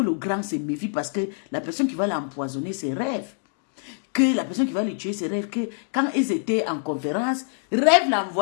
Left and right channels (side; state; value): right; silent; digital silence